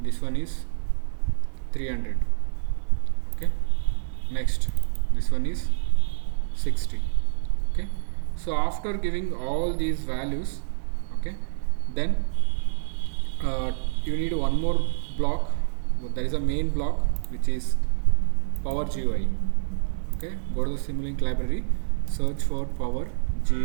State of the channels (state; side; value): silent; left; digital silence